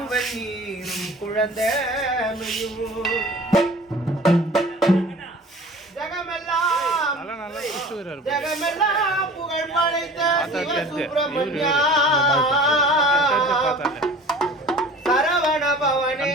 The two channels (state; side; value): normal; both; correlation 0.43